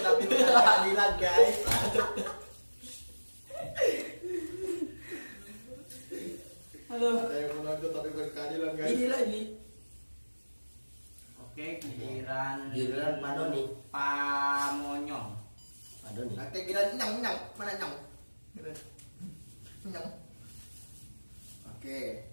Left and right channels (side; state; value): both; inverted; correlation -1.00